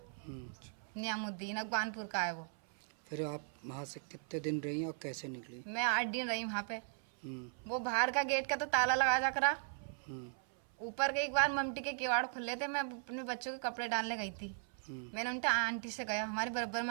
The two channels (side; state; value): left; silent; 52 dB below the other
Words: नियामुद्दीन, अगवानपुर का है वो। फिर आप वहाँ से कितने दिन रही और कैसे निकली? मैं 8 दिन रही वहाँ पे। वो बाहर का गेट का तो ताला लगा जा करा, ऊपर के एक बार ममटी के किवाड़ खुले थे। मैं अपने बच्चों के कपड़े डालने गई थी। मैंने उनके आंटी से गया, हमारे बराबर